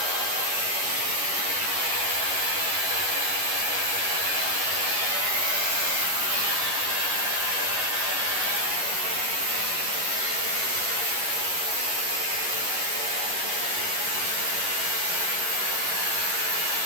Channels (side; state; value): left; late; 11 ms